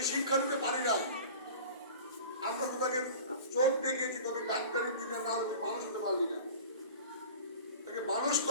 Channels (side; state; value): both; inverted; correlation -0.38